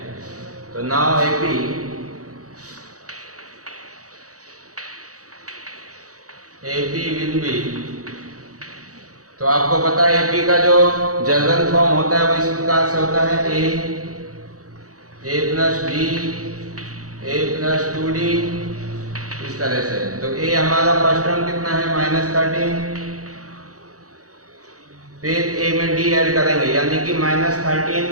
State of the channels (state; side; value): late; left; 0.66 ms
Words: तो नाउ AP विल बी, तो आपको पता है AP का जो जनरल फॉर्म होता है वो इस प्रकार से होता है, a plus b a plus 2d, इस तरह से। तो a हमारा फर्स्ट टर्म कितना है माइनस 13, फिर a में d ऐड करेंगे, यानी कि माइनस 13